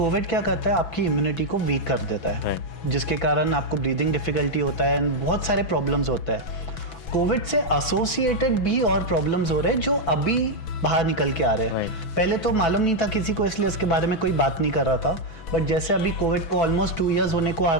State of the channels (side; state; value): right; late; 6.0 ms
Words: क्या करता है, आपकी इम्यूनिटी को वीक कर देता है, जिसके कारण आपको ब्रीदिंग डिफिकल्टी होता है, बहुत सारे प्रॉब्लम्स होता है। कोविड से एसोसिएटेड भी और प्रॉब्लम्स हो रहे हैं जो अभी बाहर निकल के आ रहे हैं। पहले तो मालूम नहीं था किसी को, इसलिए इसके बारे में कोई बात नहीं कर रहा था, बट जैसे अभी कोविड को ऑलमोस्ट 2 इयर्स होने को आ